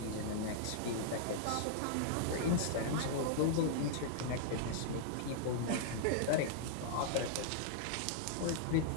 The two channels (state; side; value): different; both; correlation -0.02